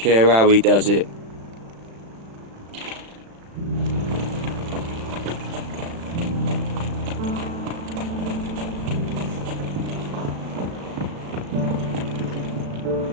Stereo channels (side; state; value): left; late; 36 ms